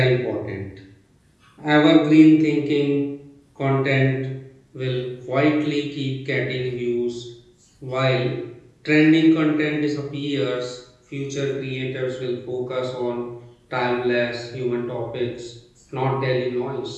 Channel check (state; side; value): identical; both; correlation 1.00